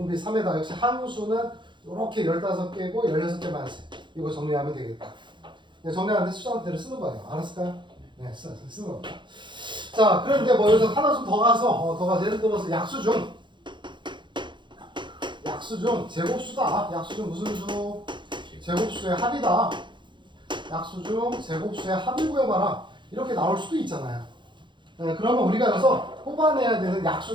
3에다 역시 항수는 이렇게 15개고 16개 마이너스 이거 정리하면 되겠다. 네, 정리하는데 수정대로 쓰는 거예요. 알았을까요? 네, 쓰는 겁니다. 자, 그런데 뭐 여기서 하나 좀 더 가서 예를 들어서 약수 중 제곱수다. 약수 중 무슨 수? 제곱수의 합이다. 약수 중 제곱수의 합을 구해봐라. 이렇게 나올 수도 있잖아요. 네, 그러면 우리가 여기서 뽑아내야 되는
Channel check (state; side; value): late; left; 0.23 ms